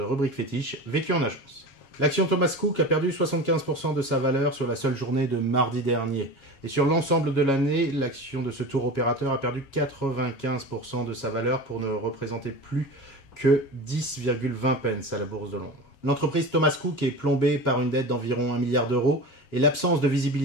fétiche Vécu en agence. L'action Thomas Cook a perdu 75% de sa valeur sur la seule journée de mardi dernier. Et sur l'ensemble de l'année, l'action de ce tour opérateur a perdu 95% de sa valeur pour ne représenter plus que 10,20 pence à la Bourse de Londres. L'entreprise Thomas Cook est plombée par une dette d'environ 1 milliard d'euros et l'absence de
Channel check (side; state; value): right; late; 7.3 ms